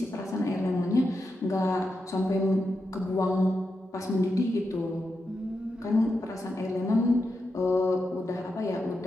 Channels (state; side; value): normal; both; correlation 0.87